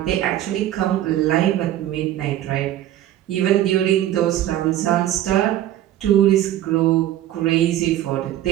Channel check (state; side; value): quieter; left; 12.8 dB